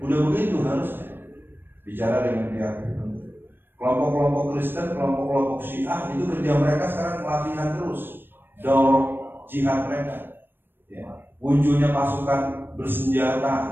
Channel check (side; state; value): left; late; 0.098 ms